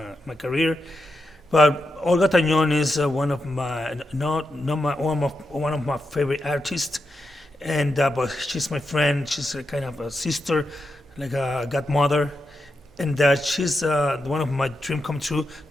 career, but Olga Tañón is one of my one of my favorite artists, and but she's my friend. She's a kind of a sister, like a godmother, and she's one of my dream come true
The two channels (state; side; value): normal; both; correlation 0.87